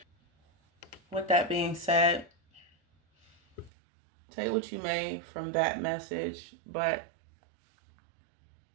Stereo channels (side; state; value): left; drops out; at 3.7 s